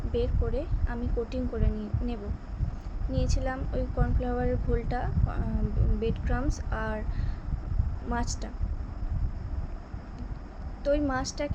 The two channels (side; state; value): both; identical; correlation 1.00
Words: বের করে আমি কোটিং করে নিয়েছিলাম ওই কর্নফ্লাওয়ারের ঘোলটা, ব্রেড ক্রাম্বস আর মাছটা। তো ওই